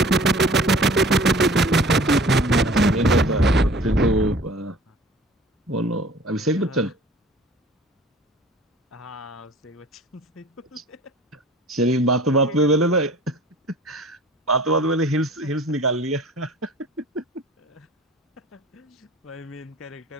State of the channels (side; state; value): both; normal; correlation 0.45